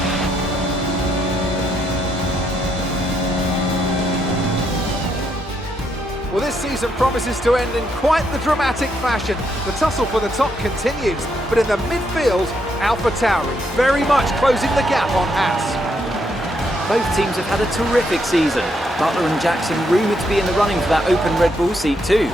Well, this season promises to end in quite the dramatic fashion. The tussle for the top continues, but in the midfield, AlphaTauri very much closing the gap on Haas. Both teams have had a terrific season. Butler and Jackson rumoured to be in the running for that open Red Bull seat too.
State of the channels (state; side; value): normal; both; correlation 0.76